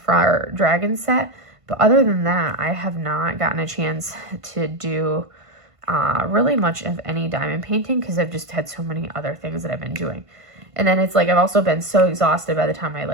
our dragon set. But other than that, I have not gotten a chance to do really much of any diamond painting because I've just had so many other things that I've been doing. And then it's like I've also been so exhausted by the time I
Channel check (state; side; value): late; left; 1.5 ms